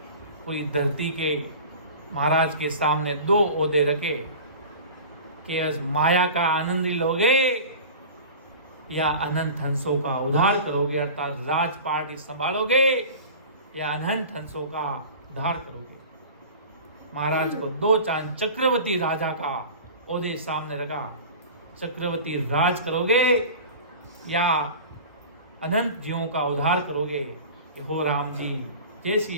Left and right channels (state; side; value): inverted; both; correlation -0.37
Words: पूरी धरती के महाराज के सामने 2 ओहदे रखे कि इस माया का आनंद लोगे या अनंत हंसों का उद्धार करोगे, अर्थात राजपाट संभालोगे या अनंत हंसों का उद्धार करोगे। महाराज को 2 चांद चक्रवर्ती राजा का ओहदे सामने रखा, चक्रवर्ती राज करोगे या अनंत जीवों का उद्धार करोगे। कि हो राम जी, जैसी